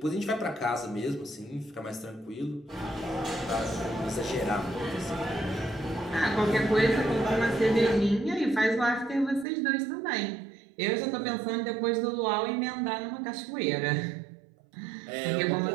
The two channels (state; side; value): drops out; left; at 9.5 s